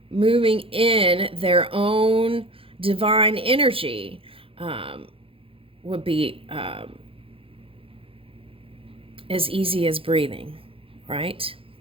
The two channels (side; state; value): left; late; 0.27 ms